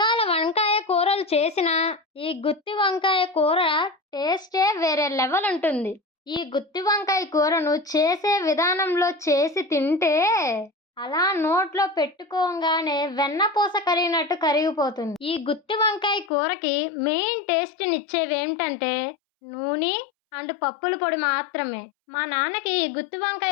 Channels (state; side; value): drops out; right; at 16.3 s